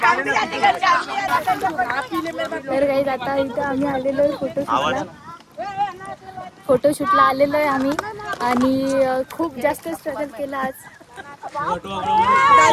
तर काही आता इथं आम्ही आलेलो आहे फोटोशूटला आलेलो आहे आम्ही आणि खूप जास्त स्ट्रगल केला आज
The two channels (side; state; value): both; identical; correlation 1.00